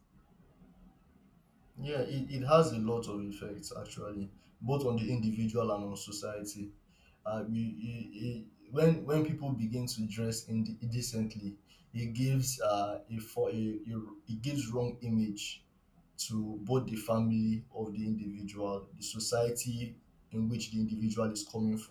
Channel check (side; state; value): both; identical; correlation 1.00